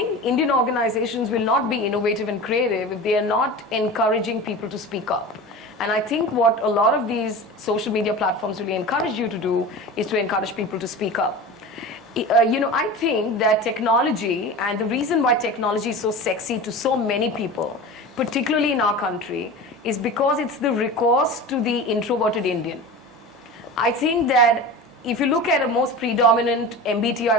Indian organizations will not be innovative and creative if they are not encouraging people to speak up. And I think what a lot of these social media platforms really encourage you to do is to encourage people to speak up. I think that technology, and the reason why technology is so sexy to so many people, particularly in our country, is because it's the recourse to the introverted Indian. I think that if you look at a most predominant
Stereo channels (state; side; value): normal; both; correlation 0.32